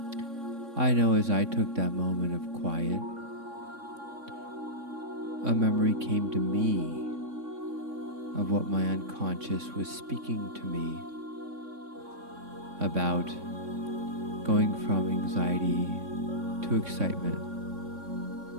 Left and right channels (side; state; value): left; late; 3.6 ms